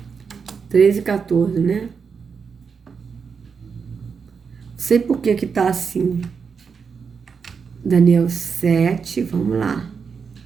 13 e 14, né? Não sei por que tá assim. Daniel 7, vamos lá.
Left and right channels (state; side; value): quieter; left; 5.9 dB